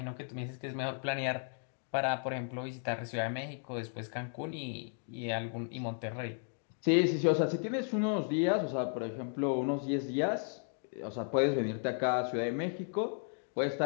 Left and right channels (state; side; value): silent; right; 55 dB below the other